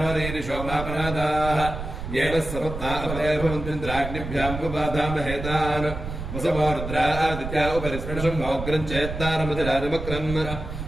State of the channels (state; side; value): noise; right; rumble, 7 dB below the sound